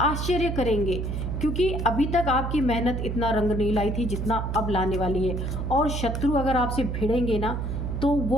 आश्चर्य करेंगे, क्योंकि अभी तक आपकी मेहनत इतना रंग नहीं लाई थी जितना अब लाने वाली है। और शत्रु अगर आपसे भिड़ेंगे ना, तो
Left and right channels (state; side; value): noise; right; hum, 2 dB below the sound